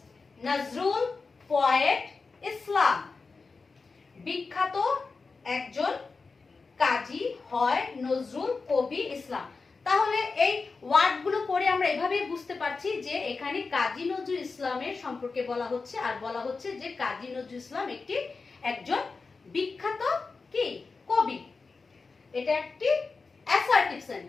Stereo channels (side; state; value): right; quieter; 4.3 dB